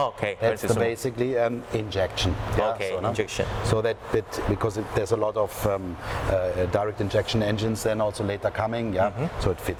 That's basically an injection. Injection. So that because there's a lot of direct injection engines then also later coming, so it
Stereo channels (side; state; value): both; identical; correlation 1.00